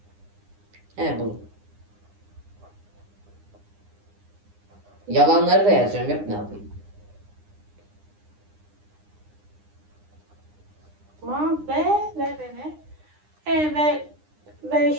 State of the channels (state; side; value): late; left; 9.8 ms